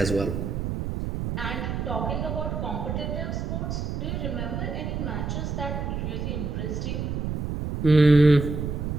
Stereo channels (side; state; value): right; noise; rumble, 2 dB below the sound